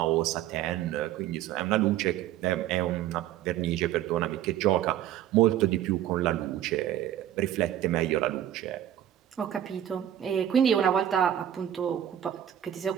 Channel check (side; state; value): left; quieter; 11.4 dB